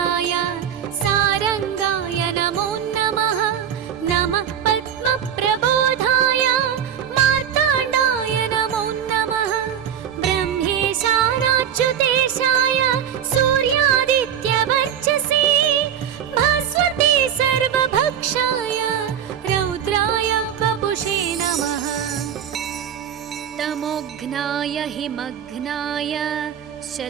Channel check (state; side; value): quieter; left; 8.8 dB